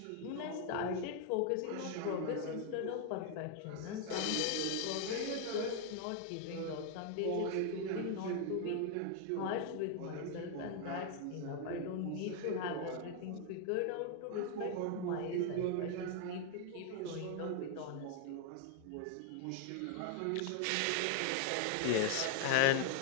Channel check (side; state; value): both; different; correlation 0.00